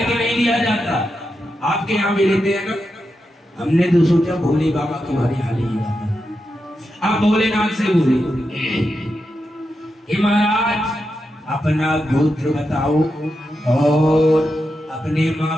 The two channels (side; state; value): both; normal; correlation 0.87